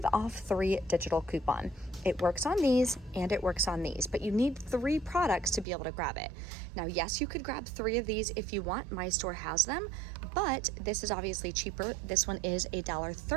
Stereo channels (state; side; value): drops out; left; at 5.7 s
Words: off 3 digital coupon. It works on these and it works on these, but you need 3 products to be able to grab it. Now, yes, you could grab 3 of these if you want. My store has them, but this is obviously cheaper. This one is